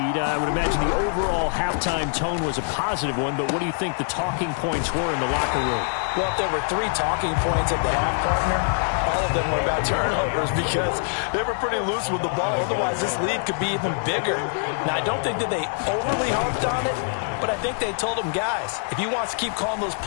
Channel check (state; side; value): silent; right; 62 dB below the other